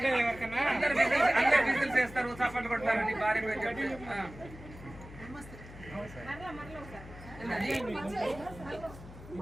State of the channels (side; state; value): left; noise; hum, 16 dB below the sound